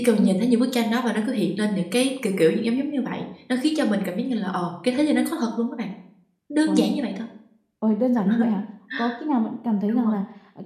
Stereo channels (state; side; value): identical; both; correlation 1.00